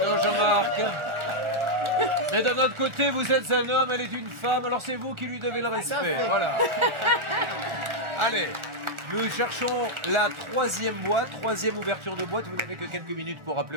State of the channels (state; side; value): late; left; 1.4 ms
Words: Non, Jean-Marc. Mais d'un autre côté, vous êtes un homme, elle est une femme, alors c'est vous qui lui devez le respect. Voilà. Allez, nous cherchons la troisième boîte, troisième ouverture de boîte. Vous n'avez que quelques minutes pour